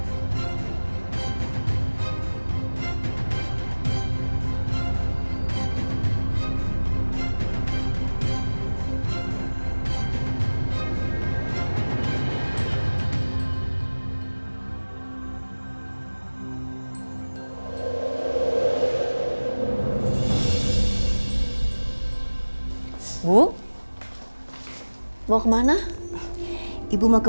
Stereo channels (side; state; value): both; inverted; correlation -1.00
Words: Bu, mau kemana? Ibu mau